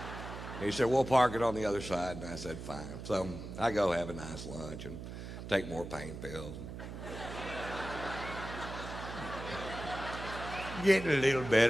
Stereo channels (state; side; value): noise; right; hum, 9 dB below the sound